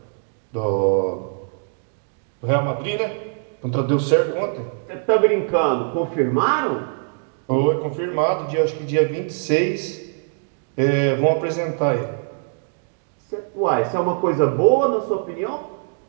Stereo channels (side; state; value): left; silent; digital silence